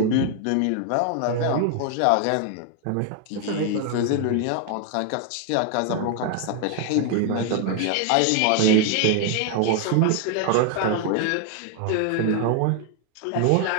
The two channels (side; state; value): both; different; correlation 0.00